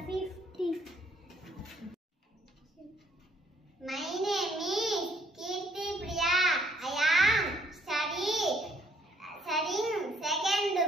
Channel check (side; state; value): both; normal; correlation 0.65